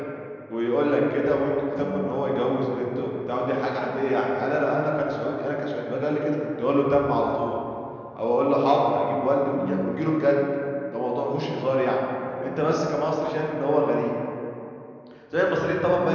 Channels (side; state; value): both; identical; correlation 1.00